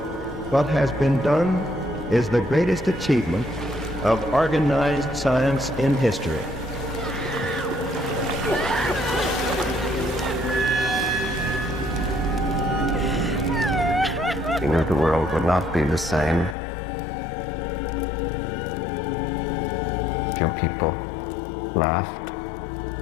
What has been done is the greatest achievement of organized science in history. We knew the world would not be the same. Few people laughed.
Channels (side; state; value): right; drops out; at 16.6 s